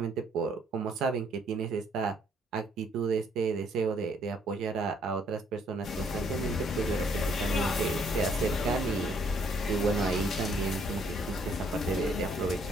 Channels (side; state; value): both; normal; correlation 0.66